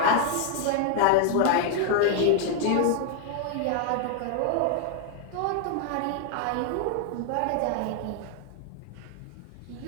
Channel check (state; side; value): different; both; correlation 0.00